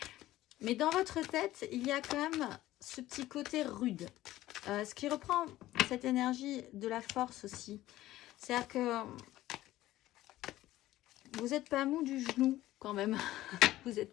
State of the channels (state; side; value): quieter; right; 15.5 dB